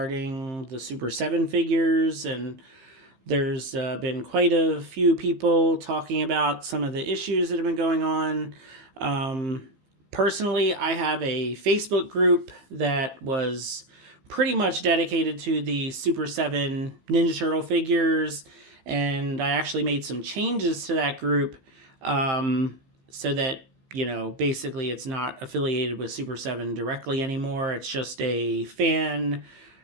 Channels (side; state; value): left; late; 15 ms